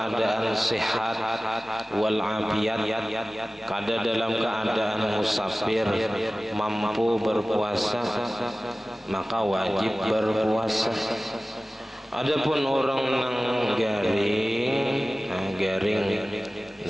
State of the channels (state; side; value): normal; both; correlation 0.97